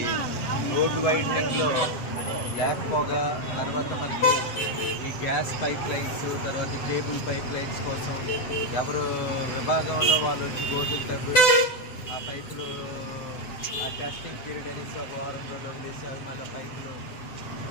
రోడ్ వైడనింగ్లో బ్లాక్ పొగ, తర్వాత మనకి ఈ గ్యాస్ పైప్ లైన్స్, తర్వాత కేబుల్ పైప్ లైన్స్ కోసం ఎవరు విభాగంలో వాళ్ళు వచ్చి గోతులు తవ్వి ఆ పైపులు ఆ టెస్టింగ్ పీరియడ్ అనేసి ఒక వారం రోజులు వదిలేసి అవి మళ్ళీ పైపులు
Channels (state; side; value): late; right; 7.8 ms